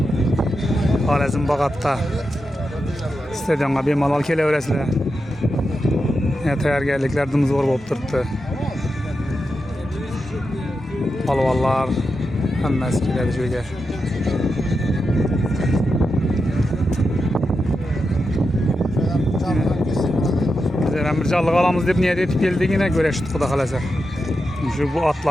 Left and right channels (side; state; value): both; normal; correlation 0.88